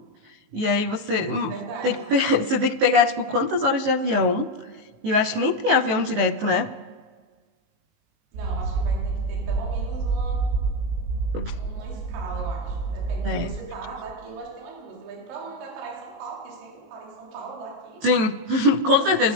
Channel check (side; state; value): left; late; 19 ms